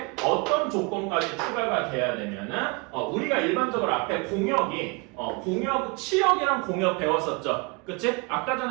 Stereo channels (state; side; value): quieter; left; 29.5 dB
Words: 어떤 조건까지 추가가 돼야 되면은 우리가 일반적으로 앞에 치역이랑 공역 배웠었죠. 그치? 아까